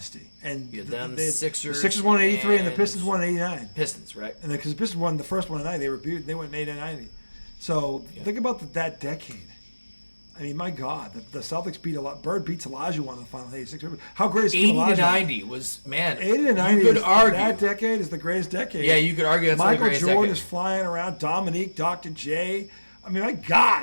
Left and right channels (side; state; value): both; inverted; correlation -1.00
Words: And the Sixers won in 83 and the Pistons won in 89. Pistons, right. And because the Pistons won the first one in 90, they went in 89 90. So think about that decade. I mean, my God, the Celtics beat Bird beats Olajuwon in the final 86. How great is 80 Olajuwon? to 90 was, man. 80 to 90 you could argue. That decade is the greatest decade. Yeah, you could argue that's the greatest decade. Michael Jordan is flying around. Dominique, Dr. J. I mean, my